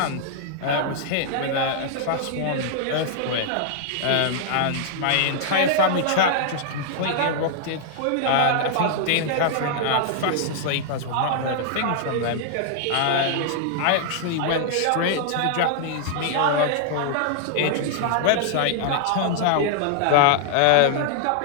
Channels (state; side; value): different; both; correlation -0.01